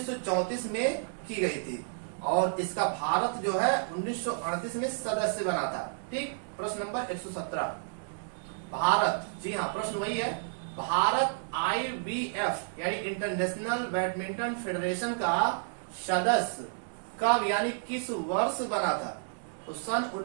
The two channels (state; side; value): silent; left; digital silence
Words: में की गई थी। और इसका भारत जो है 1938 में सदस्य बना था। ठीक। प्रश्न नंबर 117, भारत, जी हाँ प्रश्न वही है, भारत IBF यानी इंटरनेशनल बैडमिंटन फेडरेशन का सदस्य कब यानी किस वर्ष बना था? तो सन